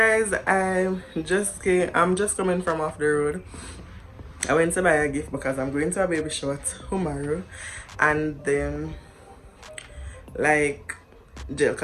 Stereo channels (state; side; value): identical; both; correlation 1.00